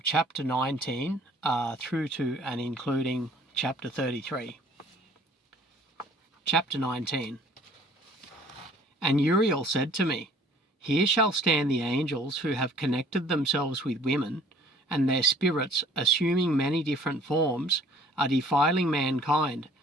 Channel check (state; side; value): normal; both; correlation 0.54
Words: chapter 19 through to and including chapter 33. Chapter 19. And Uriel said to me, Here shall stand the angels who have connected themselves with women, and their spirits, assuming many different forms, are defiling mankind,